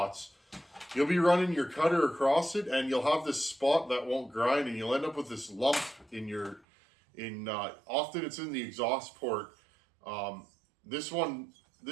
You'll be running your cutter across it and you'll have this spot that won't grind and you'll end up with this lump often it's in the exhaust port. This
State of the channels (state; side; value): drops out; left; at 6.6 s